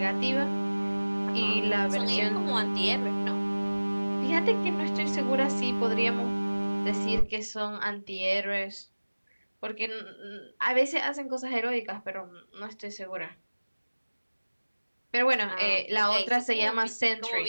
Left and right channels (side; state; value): both; inverted; correlation -1.00